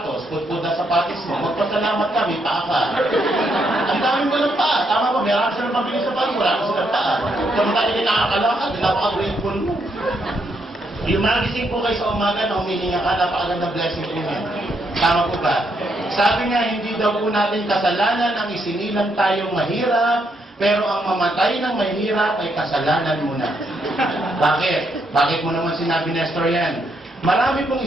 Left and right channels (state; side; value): normal; both; correlation 0.76